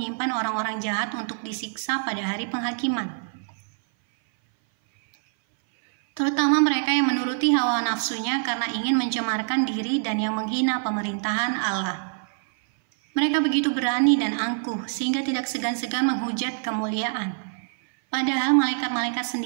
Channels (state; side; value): silent; left; 58 dB below the other